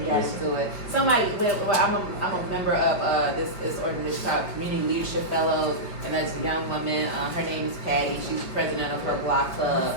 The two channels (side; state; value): right; late; 5.0 ms